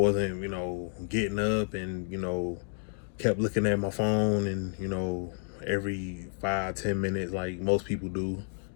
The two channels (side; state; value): right; silent; 57 dB below the other